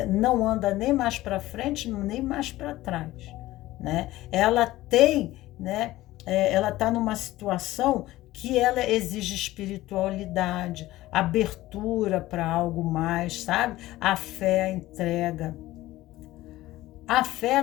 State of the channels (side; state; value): right; quieter; 16.7 dB